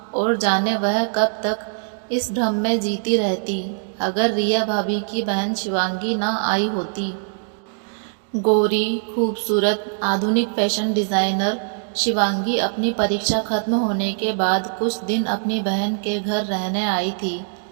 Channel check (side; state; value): left; silent; digital silence